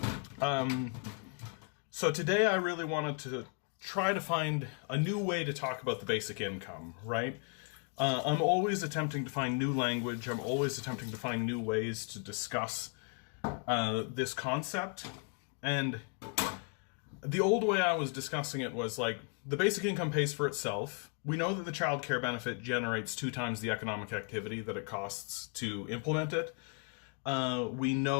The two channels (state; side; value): quieter; right; 36.5 dB